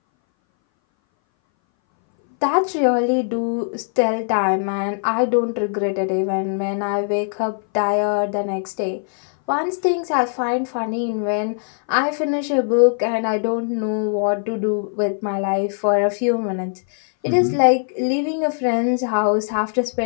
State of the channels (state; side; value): silent; right; 60 dB below the other